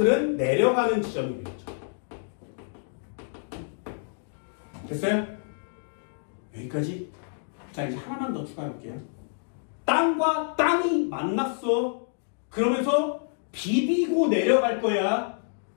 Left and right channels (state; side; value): silent; right; digital silence